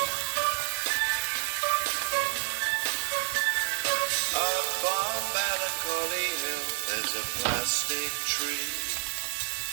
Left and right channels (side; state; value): left; silent; digital silence